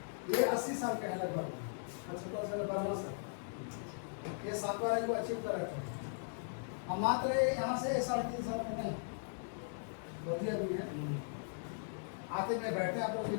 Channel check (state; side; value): silent; right; digital silence